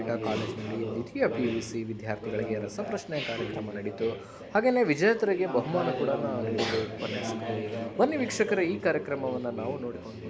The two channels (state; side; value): identical; both; correlation 1.00